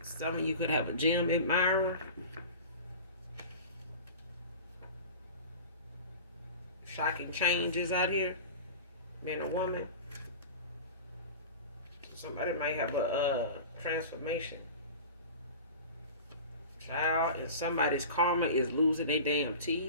Some of you could have a gym admirer. Shocking changes out here. Man or woman. Somebody might have a transformation. Child, and somebody's karma is losing their damn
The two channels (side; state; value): both; inverted; correlation -0.36